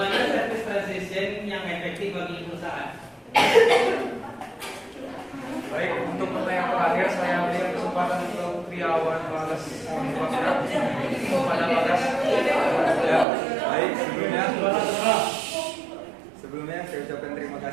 service transition yang efektif bagi perusahaan. Baik, untuk pertanyaan terakhir saya berikan kesempatan untuk Triawan Bagas kepada Bagas. Ya, baik, sebelumnya saya ucapkan terima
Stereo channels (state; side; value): drops out; left; at 13.2 s